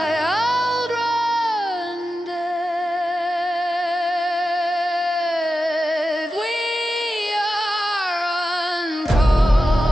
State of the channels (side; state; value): both; normal; correlation 0.91